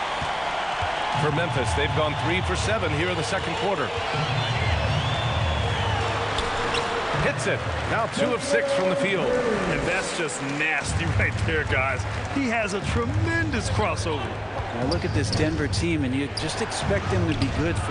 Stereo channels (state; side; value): identical; both; correlation 1.00